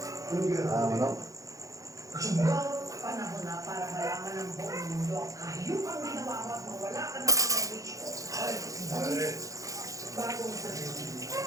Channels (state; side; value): late; left; 0.16 ms